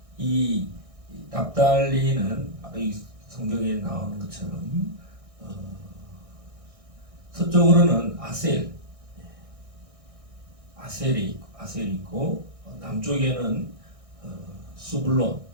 이 납달리는 이 성경에 나오는 것처럼 서쪽으로는 아셀이 있고 남쪽에는 스불론.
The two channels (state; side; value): late; left; 1.6 ms